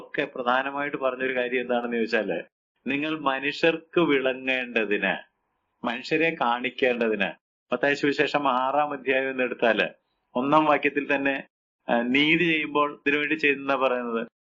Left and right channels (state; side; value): identical; both; correlation 1.00